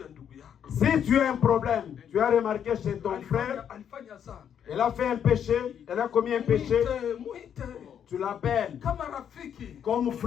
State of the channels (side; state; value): right; quieter; 8.7 dB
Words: ya ndugu yako. Si tu as un problème, tu as remarqué chez ton frère, Alifanya zambi. elle a fait un péché, elle a commis un péché, Muite. tu l'appelles Kama rafiki. comme